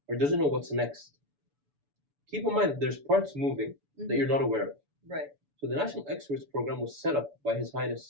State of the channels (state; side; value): late; left; 7.0 ms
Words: or doesn't know what's next, keep in mind that there's parts moving that you're not aware of. Right. So the National Experts Program was set up by His